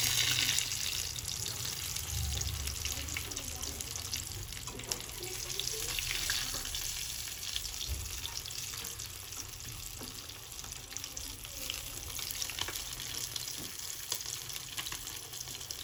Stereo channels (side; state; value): both; identical; correlation 1.00